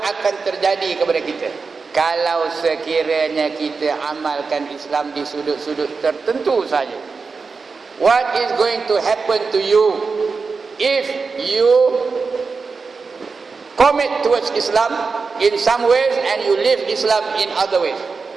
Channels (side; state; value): left; quieter; 4.7 dB